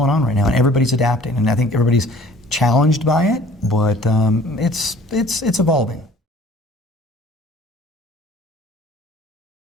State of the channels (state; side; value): normal; both; correlation 0.51